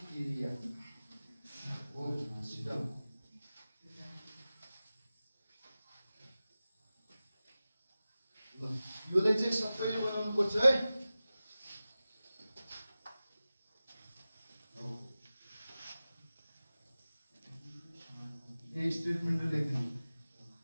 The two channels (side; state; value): both; inverted; correlation -0.96